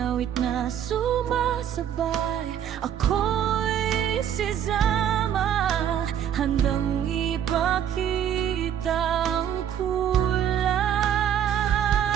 awit na sumasabay. Ako'y si Zama, handang ipakita ang kulay.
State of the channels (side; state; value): left; quieter; 9.6 dB